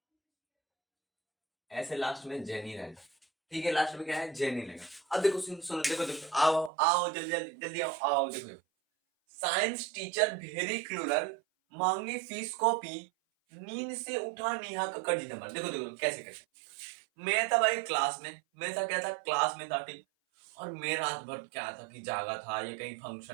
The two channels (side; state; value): left; drops out; at 6.7 s